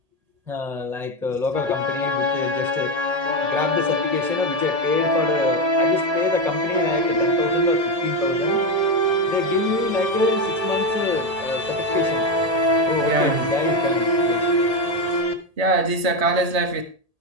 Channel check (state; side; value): late; left; 1.8 ms